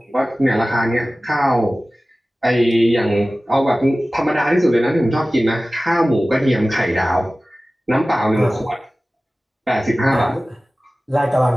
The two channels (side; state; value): both; normal; correlation 0.97